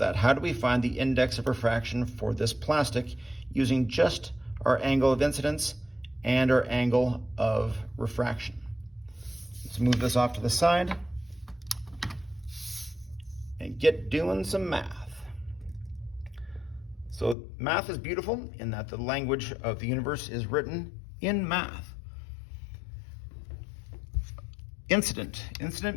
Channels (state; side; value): drops out; right; at 17.4 s